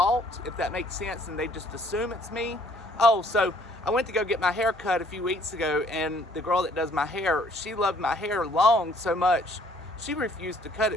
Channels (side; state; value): both; normal; correlation 0.61